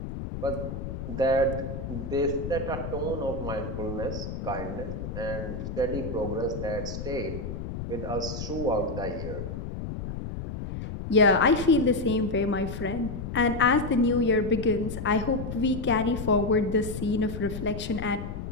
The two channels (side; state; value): left; noise; rumble, 6 dB below the sound